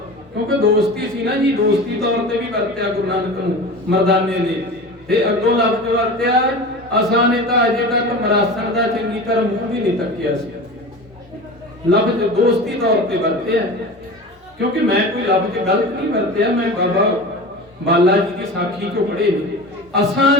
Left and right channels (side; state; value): both; normal; correlation 0.32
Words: ਕਿਉਂਕਿ ਦੋਸਤੀ ਸੀ ਨਾ ਜੀ, ਦੋਸਤੀ ਤੌਰ ਤੇ ਵੀ ਵਰਤਿਆ ਗੁਰੂ ਨਾਨਕ ਨੂੰ ਮਰਦਾਨੇ ਨੇ। ਤੇ ਅੱਗੋਂ ਲਫ਼ਜ਼ ਵਰਤਿਆ ਅਸਾਂ ਨੇ ਤਾਂ ਅਜੇ ਤੱਕ ਮਰਾਸਣ ਦਾ ਚੰਗੀ ਤਰ੍ਹਾਂ ਮੂੰਹ ਵੀ ਨਹੀਂ ਤੱਕਿਆ ਸੀ। ਲਫ਼ਜ਼ ਦੋਸਤੀ ਤੌਰ ਤੇ ਵਰਤਿਆ, ਕਿਉਂਕਿ ਮੈਂ ਕੋਈ ਲਫ਼ਜ਼ ਗਲਤ ਨਹੀਂ ਵਰਤਿਆ। ਮੈਂ ਬਾਬਾ ਬਾਲਾ ਜੀ ਦੀ ਸਾਖੀ ਚੋਂ ਪੜ੍ਹੇ ਨੇ, ਅਸਾਂ